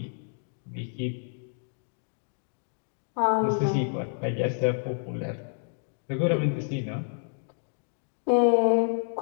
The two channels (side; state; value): right; silent; digital silence